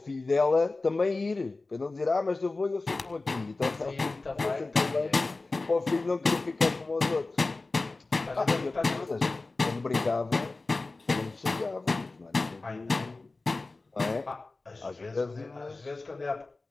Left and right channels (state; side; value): quieter; right; 3.4 dB